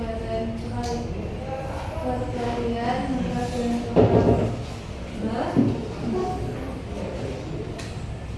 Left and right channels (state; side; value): identical; both; correlation 1.00